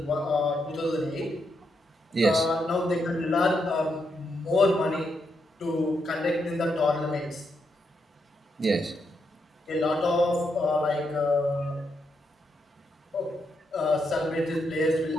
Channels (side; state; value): both; normal; correlation 0.81